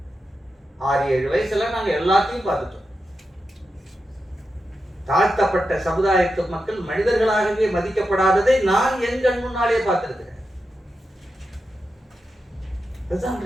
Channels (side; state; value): both; normal; correlation 0.89